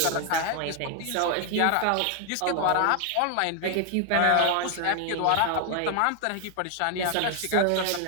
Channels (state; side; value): different; both; correlation 0.00